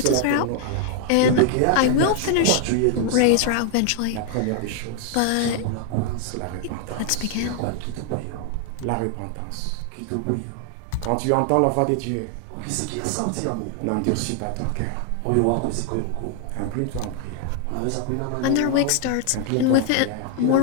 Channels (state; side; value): different; both; correlation 0.00